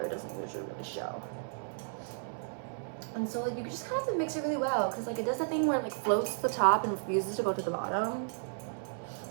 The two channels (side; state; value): left; silent; 55 dB below the other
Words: doesn't usually really show. And so like you just kind of have to mix it really well because like it does that thing where it like floats to the top and refuses to go to the bottom.